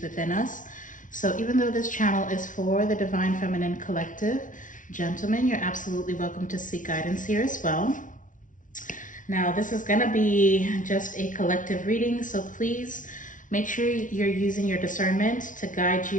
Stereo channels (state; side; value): late; right; 0.38 ms